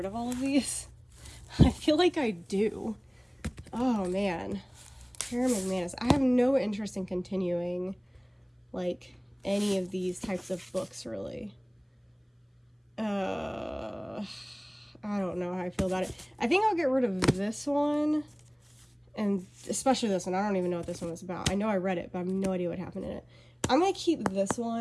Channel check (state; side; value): identical; both; correlation 1.00